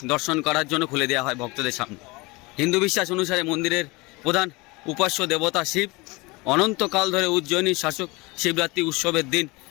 দর্শন করার জন্য খুলে দেওয়া হয় ভক্তদের সামনে। হিন্দু বিশ্বাস অনুসারে মন্দিরের প্রধান উপাস্য দেবতা শিব। অনন্তকাল ধরে উজ্জয়িনীর শাসক শিবরাত্রি উৎসবের দিন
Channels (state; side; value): quieter; right; 24.5 dB